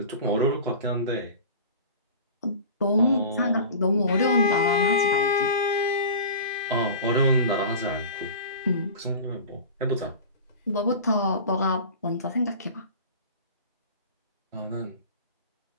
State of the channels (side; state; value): both; inverted; correlation -0.36